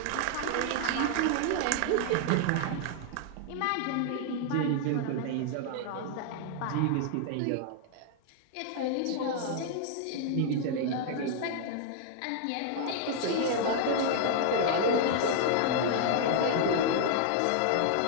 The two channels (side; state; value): both; different; correlation 0.00